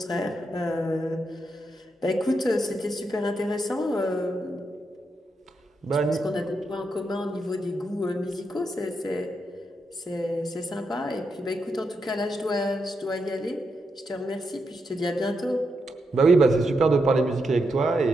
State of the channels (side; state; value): both; normal; correlation 0.83